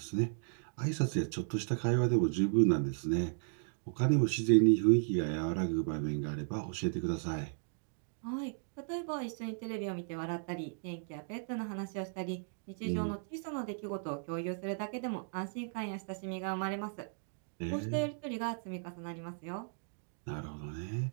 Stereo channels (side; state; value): left; silent; digital silence